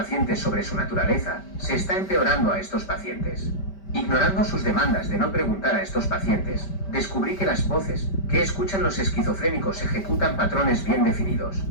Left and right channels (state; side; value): late; right; 5.1 ms